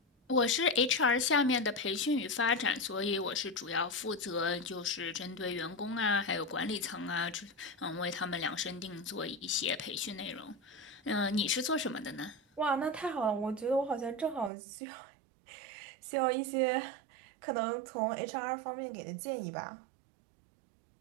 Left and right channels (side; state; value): left; drops out; at 14.5 s